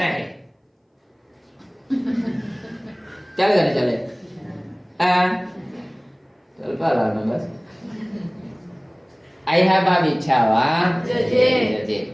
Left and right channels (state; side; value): identical; both; correlation 1.00